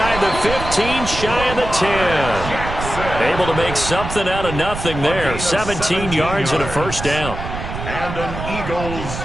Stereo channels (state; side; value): noise; right; rumble, 7 dB below the sound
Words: the 15, shy of the 10. Able to make something out of nothing there. 17 yards and a first down. And an Eagles